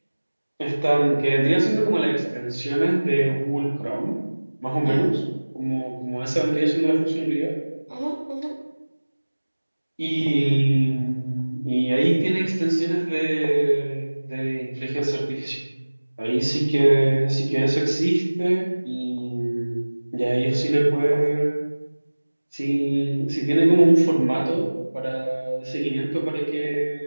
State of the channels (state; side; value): inverted; both; correlation -1.00